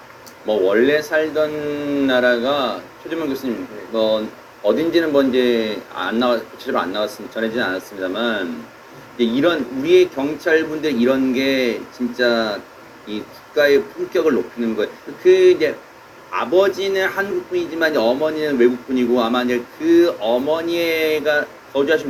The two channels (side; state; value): both; identical; correlation 1.00